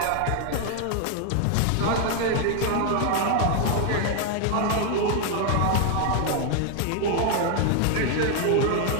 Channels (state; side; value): different; both; correlation 0.00